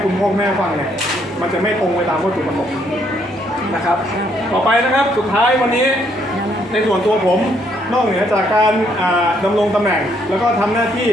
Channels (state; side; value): normal; both; correlation 0.70